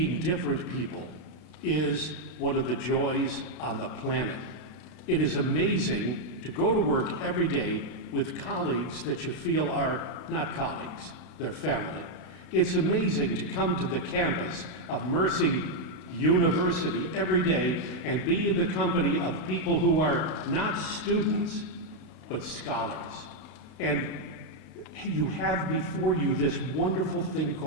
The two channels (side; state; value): right; late; 32 ms